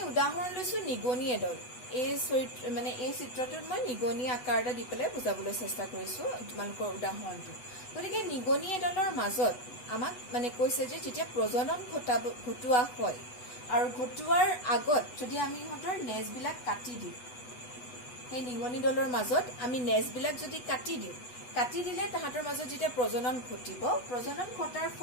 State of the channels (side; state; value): right; late; 8.1 ms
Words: উদাহৰণ লৈছো নিগনি এডল এই চৰিত্ৰ মানে এই চিত্ৰটোত মই নিগনি আকাৰ এটা দি পেলাই বুজাবলৈ চেষ্টা কৰিছো তোমালোকৰ উদাহৰণটো গতিকে নিগনি এডলৰ মাজত আমাক মানে কৈছে যে যেতিয়া প্ৰজনন ঘটোৱা হয় আৰু ঘটোৱাৰ আগত যদি আমি ইহঁতৰ নেজবিলাক কাটি দিওঁ সেই নিগনি দলৰ মাজত আমি নেজবিলাক যদি কাটি দিলে তাহাঁতৰ মাজত যেতিয়া প্ৰজনন ঘটিব প্ৰজনন ঘটাৰ